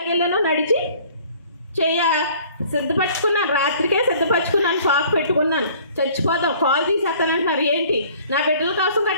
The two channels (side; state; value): both; inverted; correlation -0.53